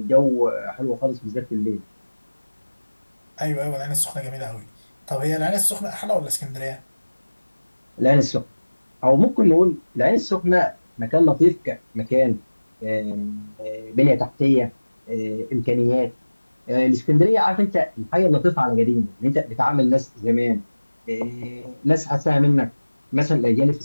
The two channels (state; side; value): inverted; both; correlation -1.00